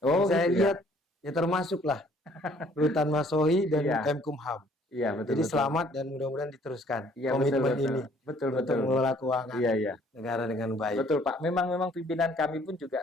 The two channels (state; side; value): normal; both; correlation 0.60